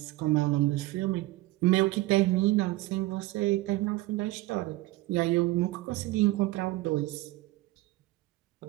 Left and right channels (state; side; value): quieter; left; 18.6 dB